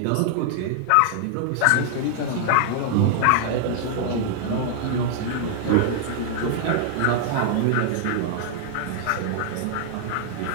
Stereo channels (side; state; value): both; different; correlation 0.00